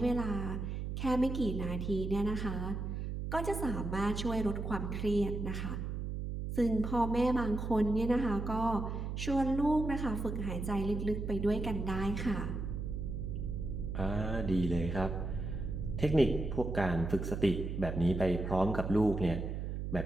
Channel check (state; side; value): noise; right; hum, 4 dB below the sound